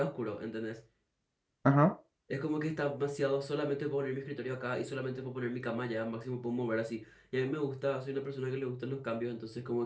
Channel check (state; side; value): identical; both; correlation 1.00